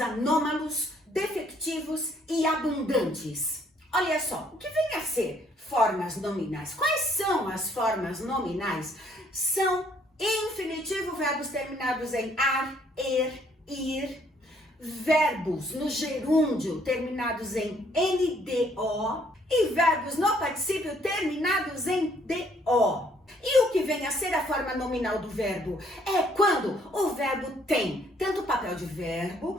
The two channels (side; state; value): both; normal; correlation 0.65